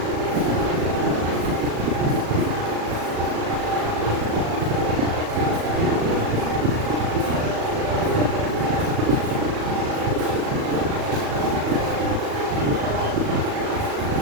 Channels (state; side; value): late; left; 37 ms